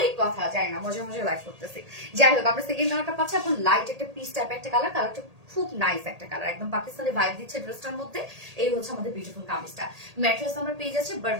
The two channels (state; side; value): late; left; 1.8 ms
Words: কথা, যাই না, মজা মজা লাইভ করতেছি। যাই হোক, আমরা সেকেন্ড কালারটা পাচ্ছি আপু, লাইট একটা পিস টাইপ একটা কালার, কালারটা খুব নাইস একটা কালার, একদম পাকিস্তানি ভাইব দিচ্ছে ড্রেসটার মধ্যে। এই হচ্ছে আমাদের বিউটিফুল কামিজটা। ম্যাট্রেস আমরা পেয়ে যাচ্ছি